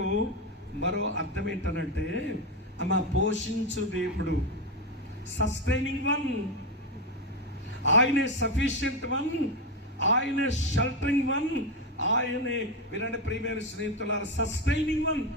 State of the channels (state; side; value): normal; both; correlation 0.11